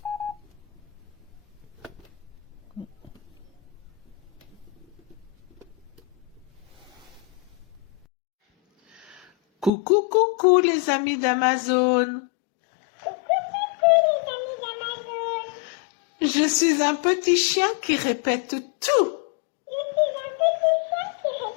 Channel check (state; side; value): drops out; right; at 9.7 s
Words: Coucou, coucou les amis d'Amazon. Je suis un petit chien qui répète tout.